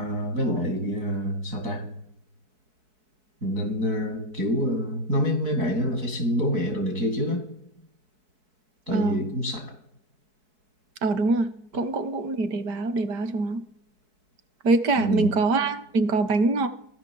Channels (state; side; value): late; left; 4.6 ms